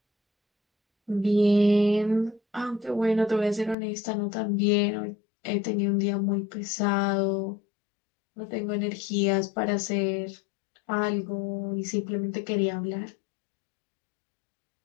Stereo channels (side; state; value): right; drops out; at 3.8 s